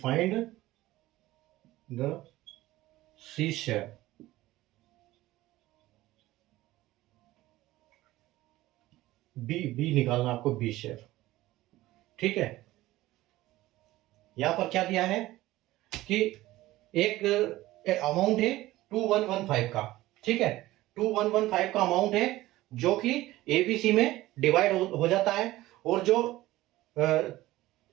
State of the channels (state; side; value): quieter; left; 17.0 dB